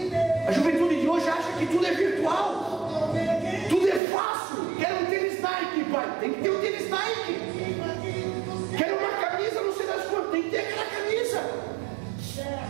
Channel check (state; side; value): drops out; left; at 4.0 s